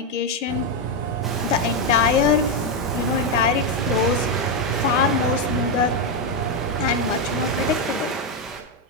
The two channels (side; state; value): both; normal; correlation 0.05